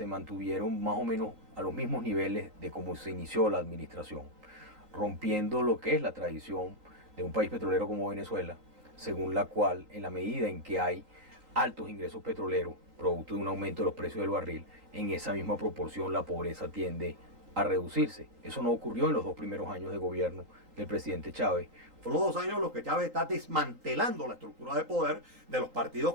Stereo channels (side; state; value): left; late; 3.8 ms